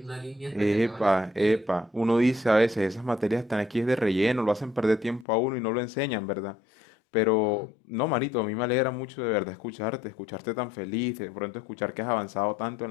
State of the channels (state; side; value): drops out; right; at 5.2 s